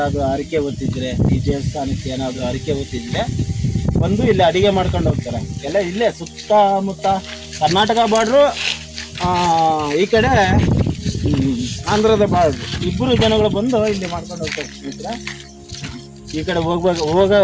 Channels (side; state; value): both; identical; correlation 1.00